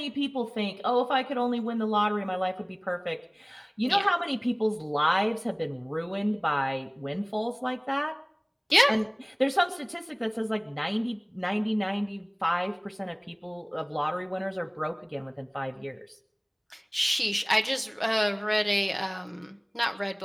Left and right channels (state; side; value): identical; both; correlation 1.00